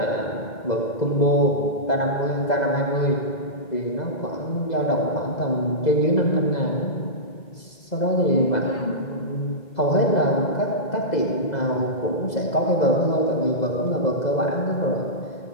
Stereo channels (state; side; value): late; right; 2.0 ms